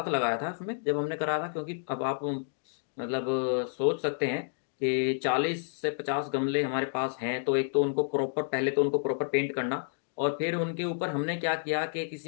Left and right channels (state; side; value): silent; right; digital silence